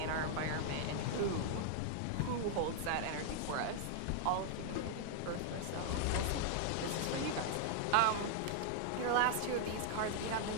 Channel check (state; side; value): different; both; correlation 0.00